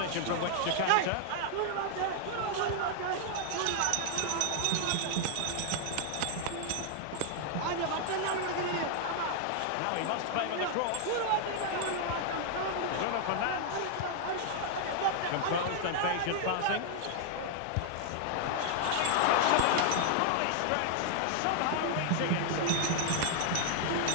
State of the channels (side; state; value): both; different; correlation 0.00